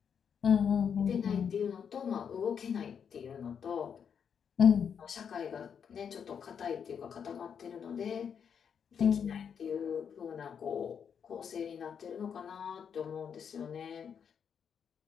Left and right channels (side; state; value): right; quieter; 7.3 dB